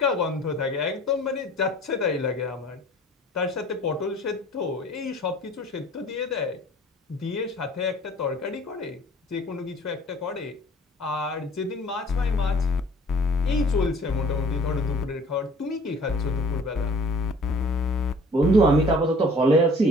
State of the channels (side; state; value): both; normal; correlation 0.50